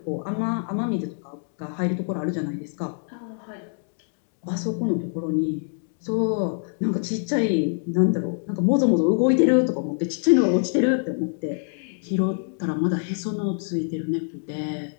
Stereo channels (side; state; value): right; silent; 62 dB below the other